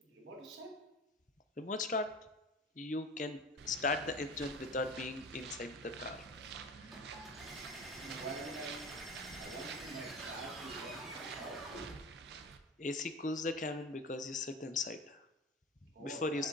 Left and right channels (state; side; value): normal; both; correlation 0.35